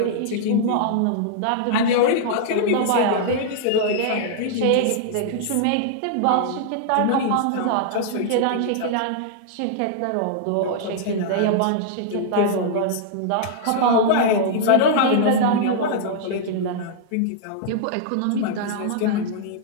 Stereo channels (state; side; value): different; both; correlation -0.01